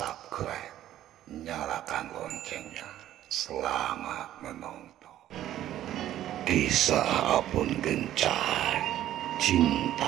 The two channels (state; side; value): quieter; left; 12.7 dB